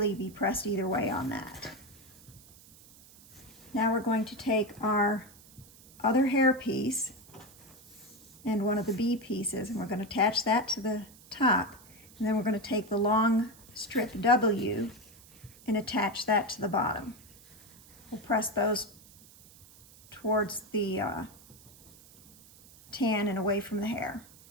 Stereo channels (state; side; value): noise; right; hiss, 23 dB below the sound